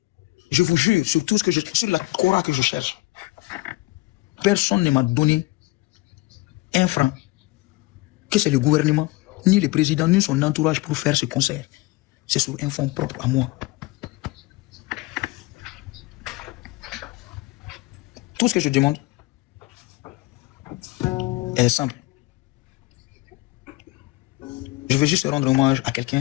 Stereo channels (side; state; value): right; quieter; 21.2 dB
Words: je vous jure, sur tout ce que sur la Cora que je cherche, personne ne m'a donné un franc, que c'est le gouvernement, ni le président, ni son entourage pour faire ce concert. C'est sur un fonds propre à moi. Tout ce que je demande est simple. Je veux juste rendre hommage à